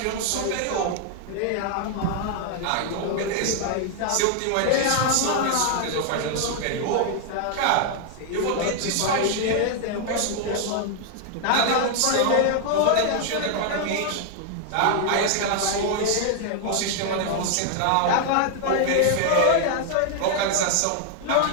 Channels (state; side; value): different; both; correlation 0.00